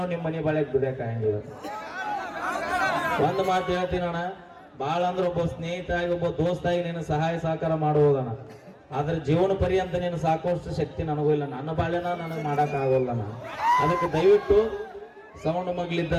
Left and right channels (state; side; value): identical; both; correlation 1.00